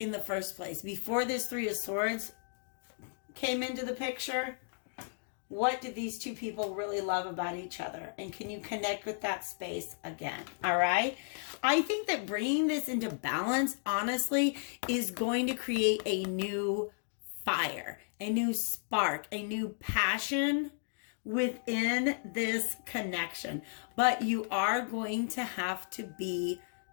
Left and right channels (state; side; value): silent; right; digital silence